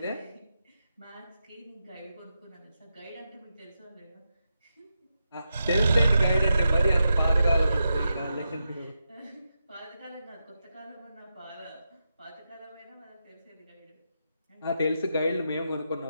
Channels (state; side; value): inverted; both; correlation -0.86